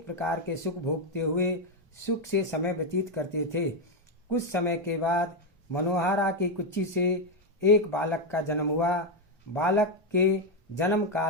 प्रकार के सुख भोगते हुए सुख से समय व्यतीत करते थे। कुछ समय के बाद मनोहरा की कुच्ची से एक बालक का जन्म हुआ। बालक के जन्म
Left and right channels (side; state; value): both; normal; correlation 0.05